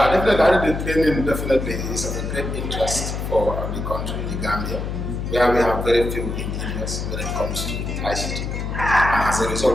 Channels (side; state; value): left; noise; hum, 4 dB below the sound